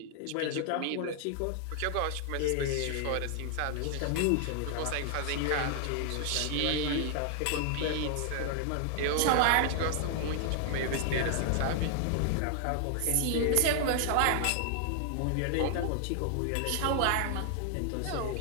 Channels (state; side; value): different; both; correlation 0.00